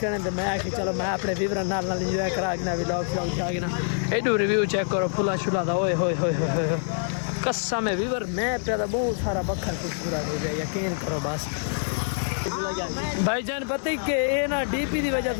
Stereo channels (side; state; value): right; silent; digital silence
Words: करें तो मैं आके चलो मैं अपने व्यूअर नाल इंजॉय करा के ना व्लॉग ना एडू रिव्यू चेक करो फुला शुला था ओए होए कसम है व्यूअर मैं पैदा बहुत सारा बखर खूबसूरत हो गया यकीन करो बस भाईजान पता ही के ये ना डीपी की वजह